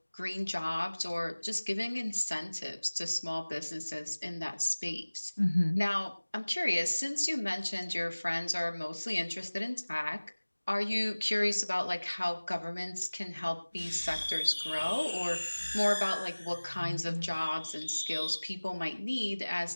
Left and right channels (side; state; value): both; inverted; correlation -1.00